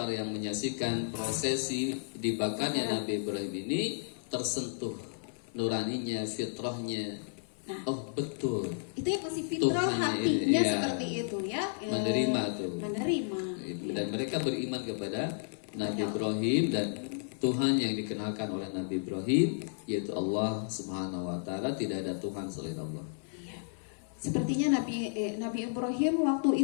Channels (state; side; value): silent; right; 56 dB below the other